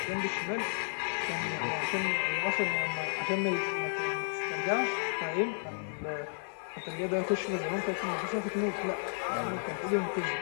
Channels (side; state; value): right; silent; digital silence